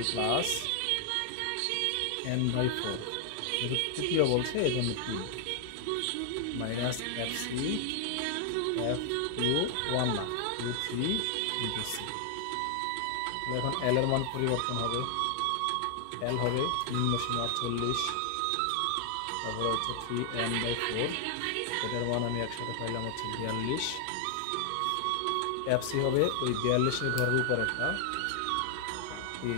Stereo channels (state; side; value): different; both; correlation 0.00